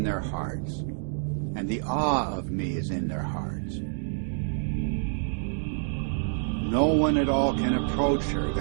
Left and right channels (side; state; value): left; silent; digital silence